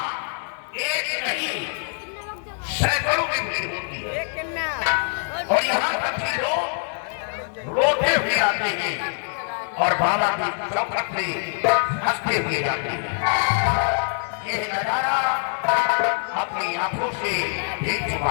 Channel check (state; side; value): silent; right; 60 dB below the other